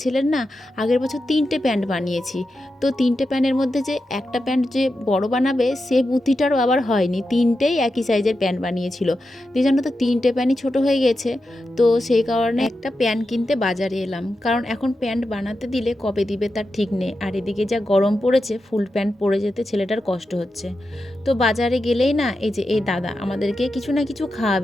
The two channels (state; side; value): normal; both; correlation 0.89